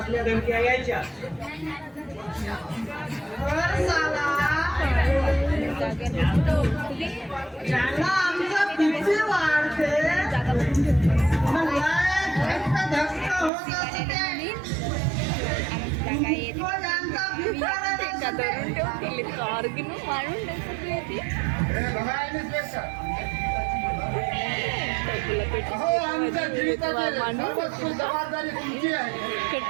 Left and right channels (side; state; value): left; drops out; at 13.5 s